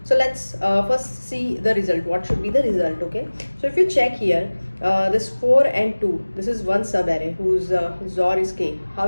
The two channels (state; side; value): inverted; both; correlation -1.00